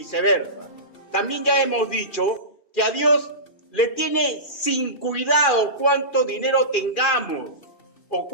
También ya hemos dicho que a Dios le tiene sin cuidado cuánto dinero tengamos o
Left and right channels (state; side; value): late; right; 2.7 ms